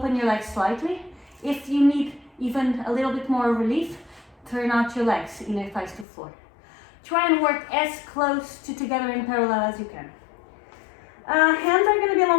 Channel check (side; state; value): right; drops out; at 6.1 s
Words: your legs slightly. If you need even a little bit more relief, turn out your legs, inner thighs to floor. Try and work as close to together in parallel as you can. Hands are going to be